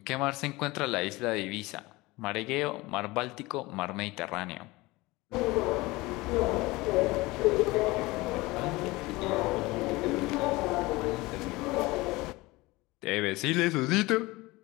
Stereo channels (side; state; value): right; quieter; 21.5 dB